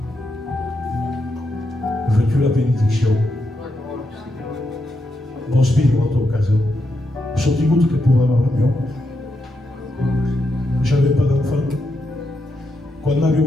Veux-tu la bénédiction? Bon spirito à ton cas. Je suis tout que pour avoir l'avion. J'avais pas d'enfant. Quand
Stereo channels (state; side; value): normal; both; correlation 0.83